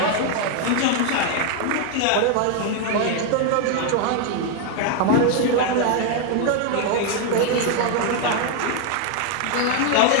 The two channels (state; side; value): different; both; correlation 0.01